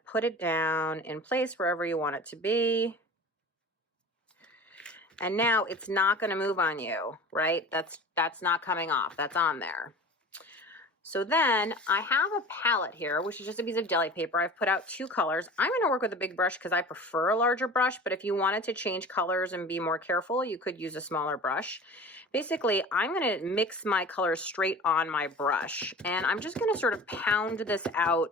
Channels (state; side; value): normal; both; correlation 0.38